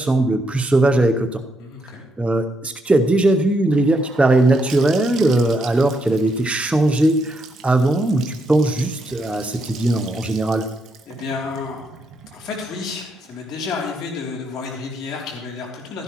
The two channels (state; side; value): normal; both; correlation 0.78